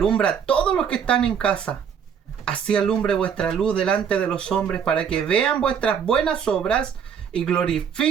a todos los que están en casa. Así alumbre vuestra luz delante de los hombres, para que vean vuestras buenas obras y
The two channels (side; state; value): left; quieter; 7.6 dB